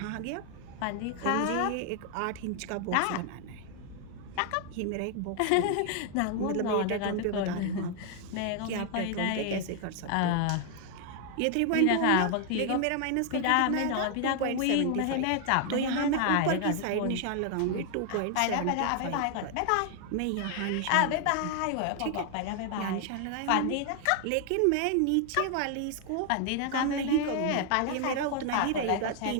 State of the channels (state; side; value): different; both; correlation 0.00